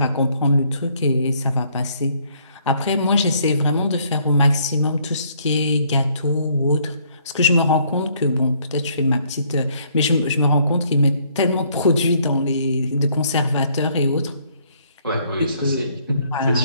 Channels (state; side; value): inverted; both; correlation -0.66